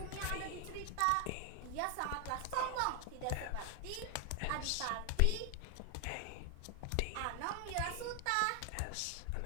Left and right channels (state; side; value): different; both; correlation 0.00